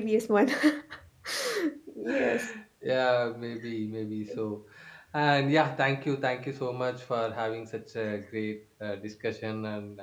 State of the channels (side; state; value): both; identical; correlation 1.00